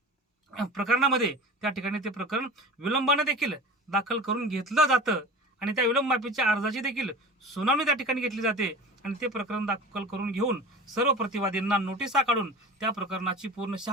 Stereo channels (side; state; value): both; normal; correlation 0.36